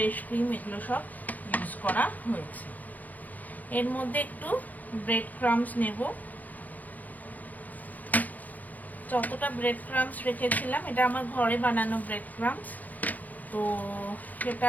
ক্রিম, এগুলো সব ইউজ করা হয়েছে। এর মধ্যে একটু ব্রেড ক্রাম্বস নেব, যতটা ব্রেড ক্রাম্বস রেখেছিলাম, এটা আমার ঘরে বানানো ব্রেড ক্রাম্বস, তো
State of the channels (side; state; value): right; late; 0.081 ms